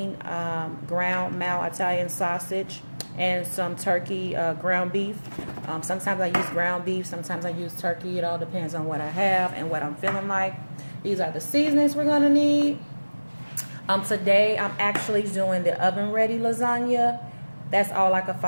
ground mal Italian sausage and some turkey ground beef. Sometimes I use ground beef, sometimes I use turkey. It all depends on what I have and what I'm feeling like. These are the seasonings we're going to need. Today I'm actually doing the oven ready lasagna. That's all I could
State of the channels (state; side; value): inverted; both; correlation -1.00